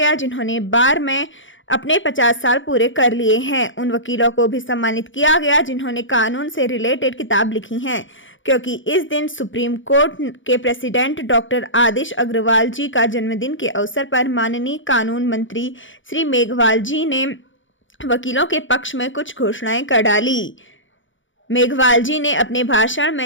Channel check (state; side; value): late; right; 0.56 ms